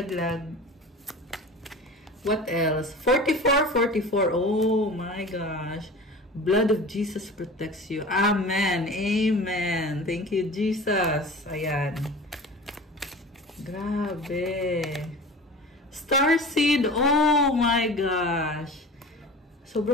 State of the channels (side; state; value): both; normal; correlation 0.37